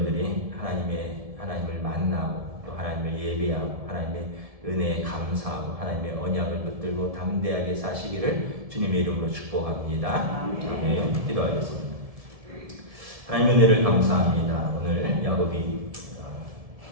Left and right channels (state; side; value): late; left; 1.7 ms